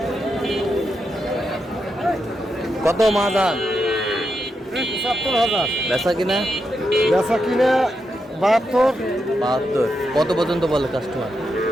কত মাদান? 70,000। বেচা কিনা? বেচা কিনে 72। 72। কত পর্যন্ত বলে কাস্টমার?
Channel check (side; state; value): both; normal; correlation 0.85